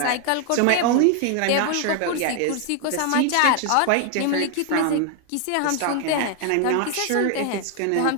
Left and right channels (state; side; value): different; both; correlation 0.00